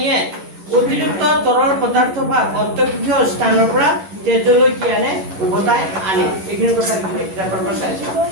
অতিৰিক্ত তৰল পদাৰ্থ বা অন্তঃকোষীয় স্থানৰ পৰা তেজলৈ কি আনে উভতাই আনে এইখিনি কথা লিখি কিতাপৰ পৰা চাইছো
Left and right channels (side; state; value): left; late; 11 ms